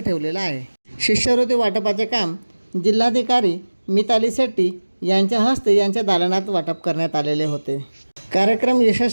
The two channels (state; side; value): inverted; both; correlation -1.00